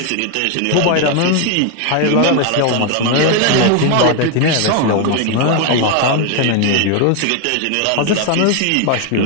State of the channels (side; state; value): both; different; correlation 0.01